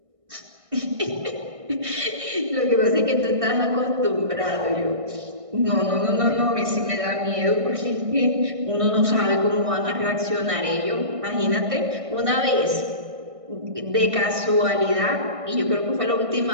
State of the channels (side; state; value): left; late; 1.6 ms